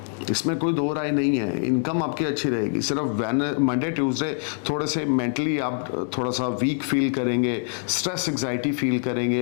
इसमें कोई दो राय नहीं है, इनकम आपकी अच्छी रहेगी। सिर्फ मंडे ट्यूसडे थोड़े से मेंटली आप थोड़ा सा वीक फील करेंगे, स्ट्रेस एंग्जाइटी फील करेंगे,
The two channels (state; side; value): silent; right; 59 dB below the other